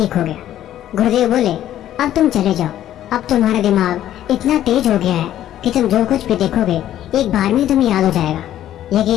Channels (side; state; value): right; quieter; 12.1 dB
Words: हो गया। गुरुदेव बोले, अब तुम चले जाओ। अब तुम्हारा दिमाग इतना तेज हो गया है कि तुम जो कुछ भी देखोगे एक बार में तुम्हें याद हो जाएगा।